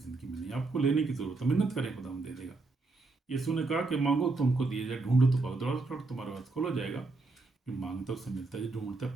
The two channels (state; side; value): quieter; left; 3.5 dB